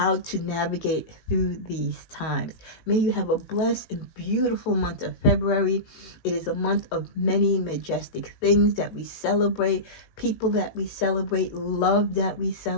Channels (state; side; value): late; right; 18 ms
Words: to navigate through these times. May you have a blessed and beautiful month of February. It is a month of many majestic things that we celebrate, people that we celebrate, love that we